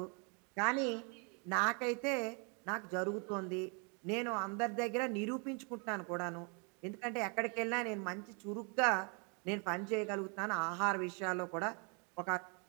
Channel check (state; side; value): quieter; left; 35.2 dB